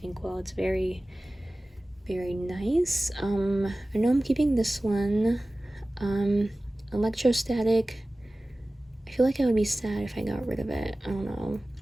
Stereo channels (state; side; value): normal; both; correlation 0.97